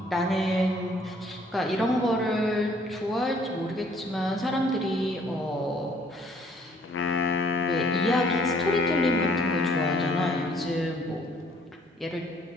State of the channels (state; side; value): normal; both; correlation 0.61